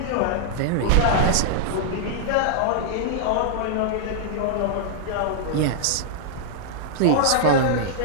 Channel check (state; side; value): different; both; correlation -0.01